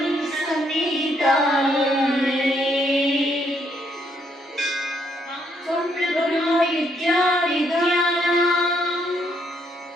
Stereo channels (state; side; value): normal; both; correlation 0.72